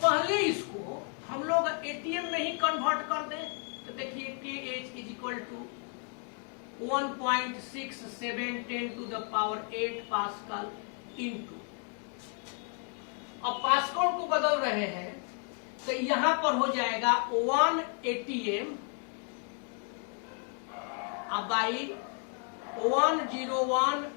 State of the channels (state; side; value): quieter; right; 39.7 dB